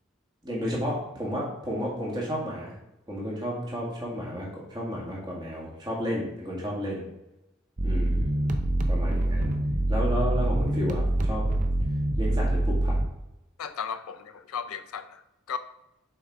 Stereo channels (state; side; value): normal; both; correlation 0.85